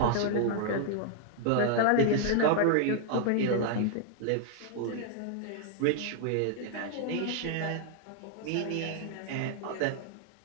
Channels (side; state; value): both; different; correlation -0.01